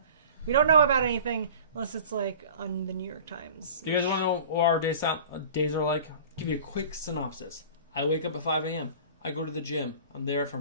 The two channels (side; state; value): both; inverted; correlation -0.42